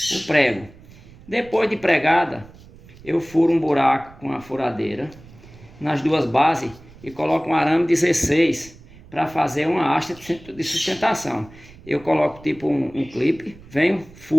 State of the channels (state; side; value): noise; right; rumble, 22 dB below the sound